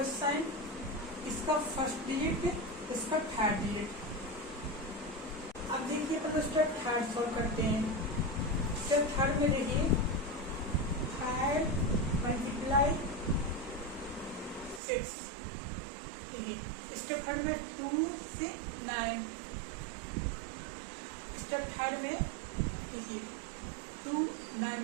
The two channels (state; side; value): drops out; left; at 14.8 s